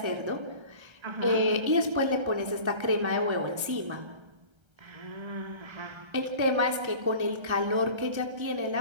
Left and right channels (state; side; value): late; left; 1.3 ms